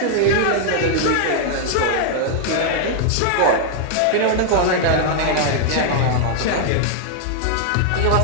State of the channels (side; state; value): both; different; correlation 0.00